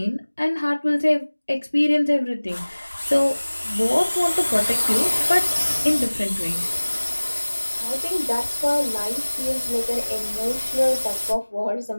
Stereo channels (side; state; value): both; inverted; correlation -1.00